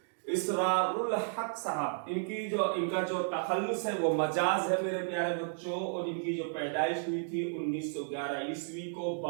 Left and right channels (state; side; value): silent; left; digital silence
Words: इसरारुल हक साहब, इनका जो तखल्लुस है वो मजाज है मेरे प्यारे बच्चों। और इनकी जो पैदाइश हुई थी 1911 ईस्वी को